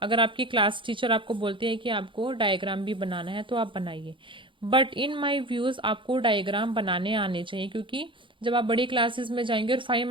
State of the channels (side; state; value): left; late; 0.24 ms